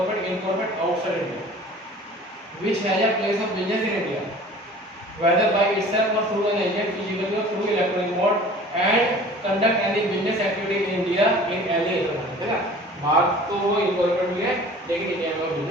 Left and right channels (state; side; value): normal; both; correlation 0.46